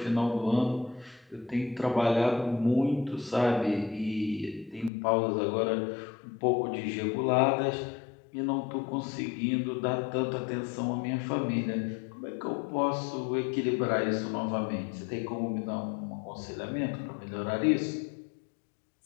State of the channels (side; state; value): right; drops out; at 4.9 s